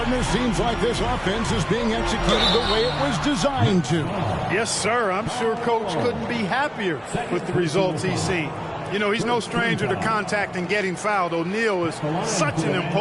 seems like this offense is being executed the way it was designed to. Yes, sir. I'm sure Coach couldn't be happier with the results he's seen. You know, he's no stranger to contact and getting fouled. O'Neal is such an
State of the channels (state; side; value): identical; both; correlation 1.00